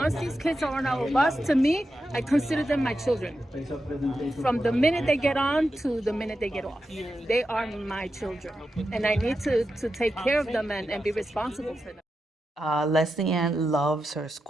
these kids are on our bus, to me, I consider them my children. From the minute they get on to the minute they get off, they are my children, and I need to take care of them and be responsible for them. Leslie Ann loves her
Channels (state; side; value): normal; both; correlation 0.89